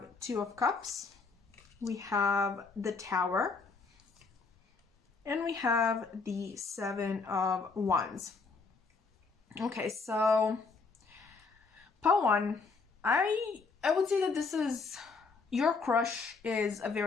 2 of Cups, we have the Tower, and we have the 7 of Wands. Okay, so pile 1, I would say that this is, your crush is a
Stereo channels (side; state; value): right; quieter; 4.4 dB